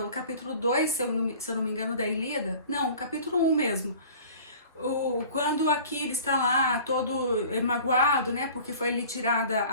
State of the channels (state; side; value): inverted; both; correlation -0.45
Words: capítulo 2, se eu não me engano, da Ilíada. Não, o capítulo 1 mesmo. Quando Aquiles está lá todo magoado, né, porque foi lhe tirada